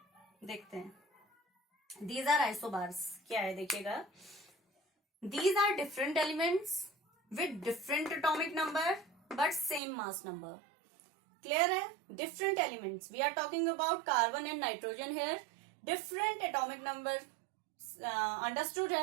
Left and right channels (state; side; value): drops out; left; at 9.8 s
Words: देखते हैं, these are isobars। क्या है देखिएगा, these are different elements with different atomic number but same mass number। clear है, different elements, we are talking about carbon and nitrogen here, different atomic number understood है,